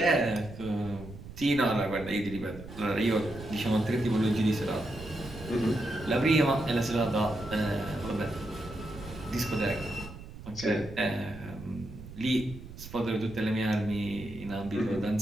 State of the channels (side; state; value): right; noise; rumble, 14 dB below the sound